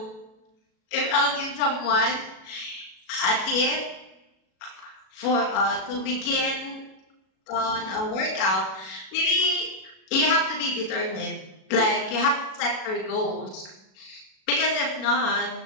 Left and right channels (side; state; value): right; late; 37 ms